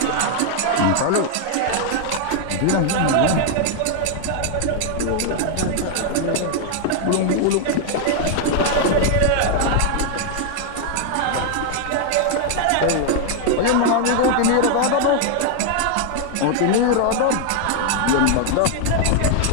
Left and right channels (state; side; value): different; both; correlation 0.00